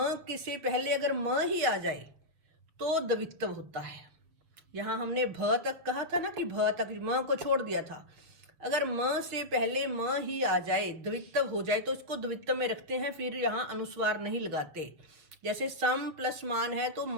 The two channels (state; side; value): late; left; 7.2 ms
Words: के से पहले अगर म ही आ जाए तो द्वित्व होता है। यहाँ हमने भ तक कहा था ना, कि भ तक म को छोड़ दिया था। अगर म से पहले म ही आ जाए, द्वित्व हो जाए, तो इसको द्वित्व में रखते हैं, फिर यहाँ अनुस्वार नहीं लगाते। जैसे सम प्लस मान है तो